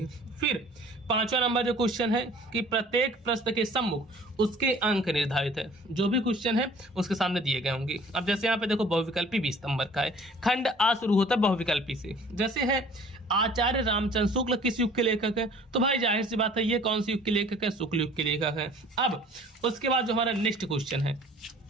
फिर 5वां नंबर जो क्वेश्चन है कि प्रत्येक प्रश्न के सम्मुख उसके अंक निर्धारित है, जो भी क्वेश्चन है उसके सामने दिए गए होंगे। अब जैसे यहाँ पे देखो बहुविकल्पी 20 नंबर का है, खंड आ शुरू होता है बहुविकल्पी से, जैसे है आचार्य रामचंद्र शुक्ल किस युग के लेखक है, तो भाई जाहिर सी बात है ये कौन सी युग के लेखक है, शुक्ल युग के लेखक है। अब उसके बाद जो हमारा नेक्स्ट क्वेश्चन है,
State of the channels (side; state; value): both; normal; correlation 0.51